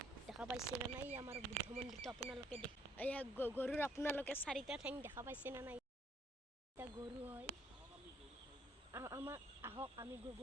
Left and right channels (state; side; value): normal; both; correlation 0.67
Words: দেখা পাইছে না নাই? আমাৰ বুদ্ধ মন্দিৰটো আপোনালোকে এয়া গৰুৰ আপোনালোকে চাৰিটা ঠেং দেখা পাইছে না নাই? এতিয়া গৰু হয় আমাৰ, আহক আমি